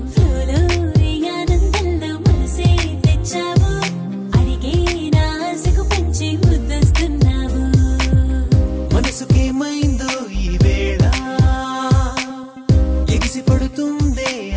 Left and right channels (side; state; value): both; identical; correlation 1.00